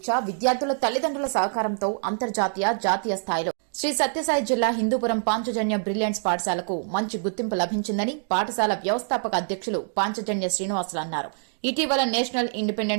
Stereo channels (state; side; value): silent; left; digital silence